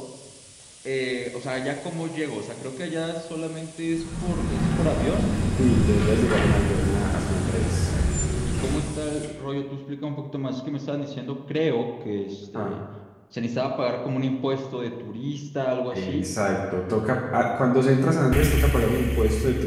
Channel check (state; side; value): identical; both; correlation 1.00